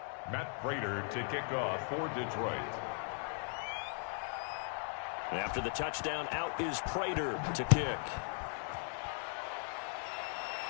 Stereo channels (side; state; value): right; silent; 52 dB below the other